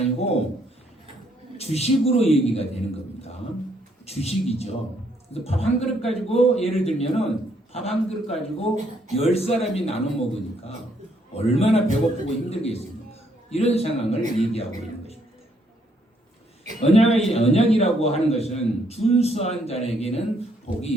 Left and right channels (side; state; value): both; normal; correlation 0.70